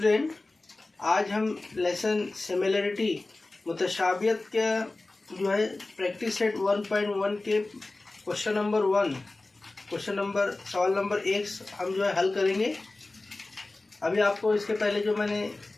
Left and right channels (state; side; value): quieter; right; 3.1 dB